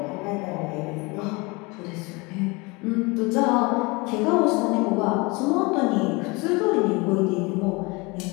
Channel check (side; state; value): right; quieter; 26.2 dB